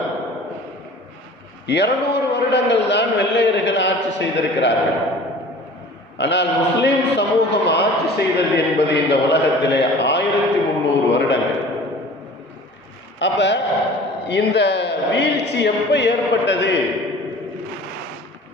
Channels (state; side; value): normal; both; correlation 0.44